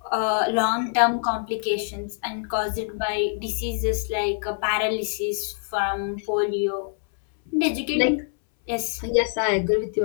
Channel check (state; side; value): silent; right; 62 dB below the other